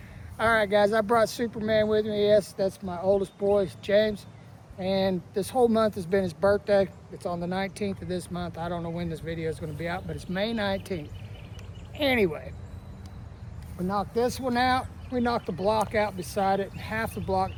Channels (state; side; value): identical; both; correlation 1.00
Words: All right, guys, I brought Superman with me. Yes, that's my oldest boy, James. And this whole month has been his birthday. It's on the 19th of this month. I don't know when this video is going to be out, but it's May 19th. Anyway, we knocked this one out. We knocked the block out beside it, half the block